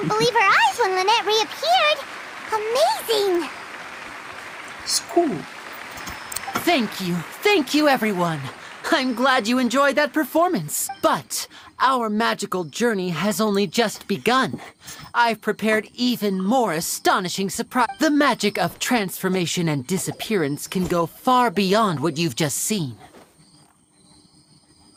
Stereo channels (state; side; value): identical; both; correlation 1.00